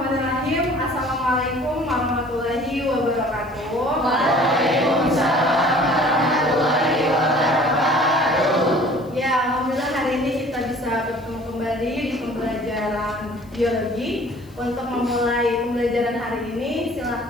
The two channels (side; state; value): left; noise; hiss, 29 dB below the sound